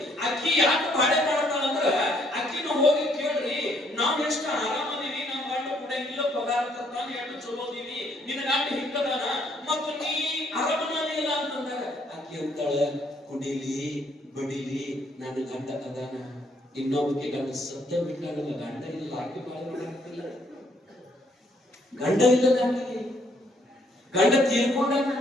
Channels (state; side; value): normal; both; correlation 0.68